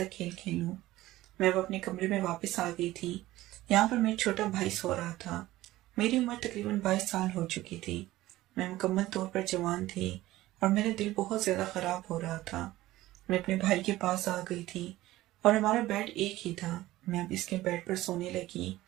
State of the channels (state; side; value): quieter; left; 16.5 dB